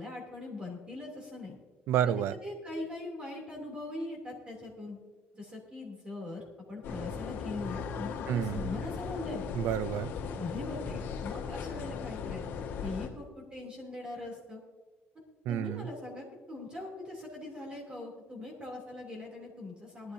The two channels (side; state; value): both; normal; correlation 0.51